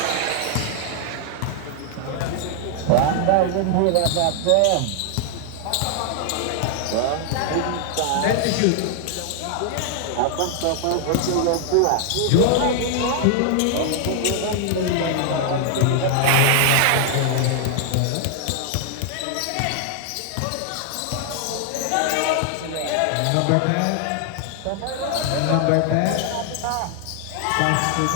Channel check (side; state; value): both; different; correlation 0.00